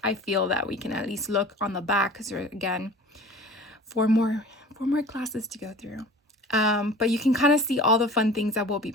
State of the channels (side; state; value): both; normal; correlation 0.42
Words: feel that we can at least look on the back, because there are, again, four more classes to go through. But you can kind of see all the fun things that we'll be